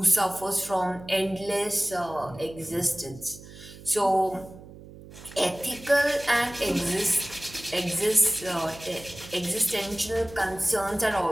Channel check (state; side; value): noise; right; hum, 17 dB below the sound